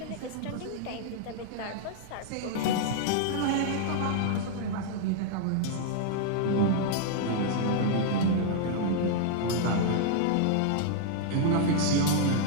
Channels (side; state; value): both; different; correlation -0.01